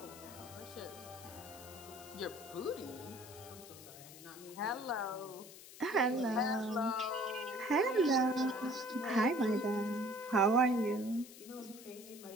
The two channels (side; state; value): left; noise; hiss, 17 dB below the sound